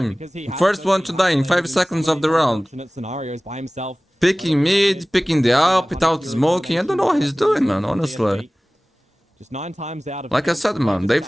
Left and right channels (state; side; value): normal; both; correlation 0.98